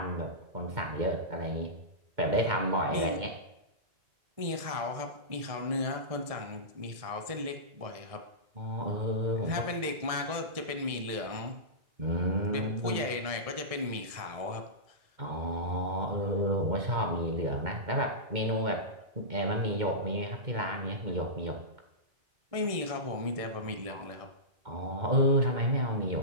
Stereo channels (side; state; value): left; late; 1.7 ms